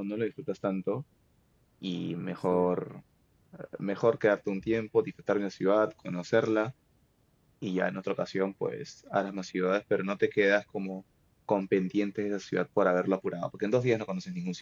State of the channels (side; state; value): both; identical; correlation 1.00